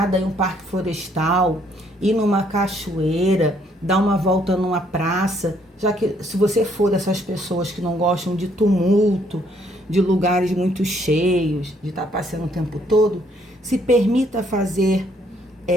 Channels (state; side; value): normal; both; correlation 0.68